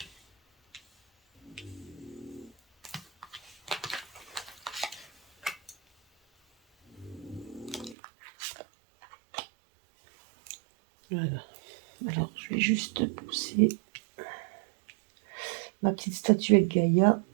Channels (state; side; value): drops out; left; at 8.0 s